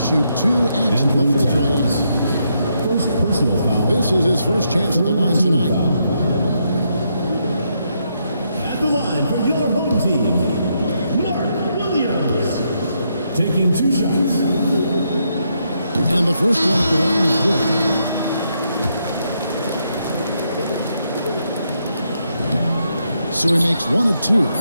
2 at the free throw line. First personal foul. This is his first chance at the line tonight. At the line for your home team, Mark Williams. Taking 2 shots. And the first one at the line is good. So he makes 1 of 2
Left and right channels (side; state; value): both; inverted; correlation -0.78